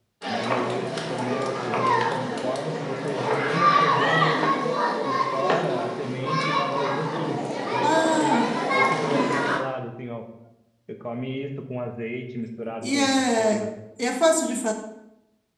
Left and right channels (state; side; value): identical; both; correlation 1.00